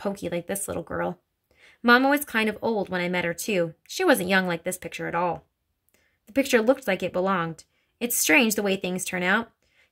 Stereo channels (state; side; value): identical; both; correlation 1.00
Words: like this little girl. Mama was kind of old when I met her, too. She wasn't young like this picture at all. The picture looked like it belonged. It's strange the way things turn out.